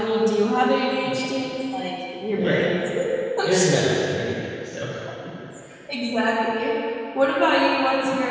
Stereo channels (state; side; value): identical; both; correlation 1.00